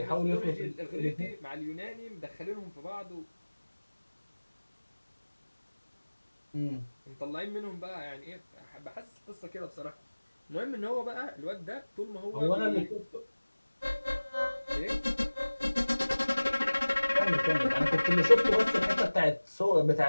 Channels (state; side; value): inverted; both; correlation -1.00